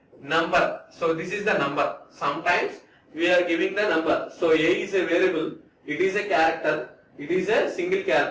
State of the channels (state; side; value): identical; both; correlation 1.00